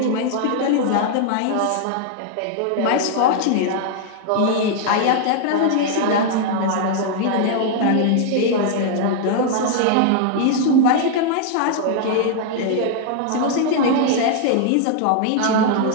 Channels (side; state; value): both; different; correlation 0.00